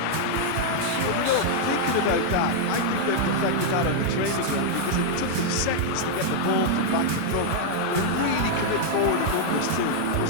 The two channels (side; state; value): both; different; correlation -0.01